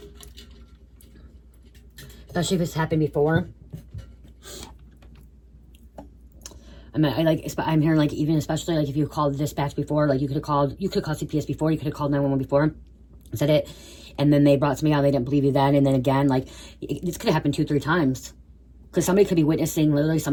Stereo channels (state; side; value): identical; both; correlation 1.00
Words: Especially if it's happened before. I'm hearing like, even especially like if you called the dispatch before, like you could have called CPS before, you could have called 911 before, said it, and then they brought somebody out, they didn't believe you then, and then again, like this could have happened 2-3 times. Because somebody could be witnessing, literally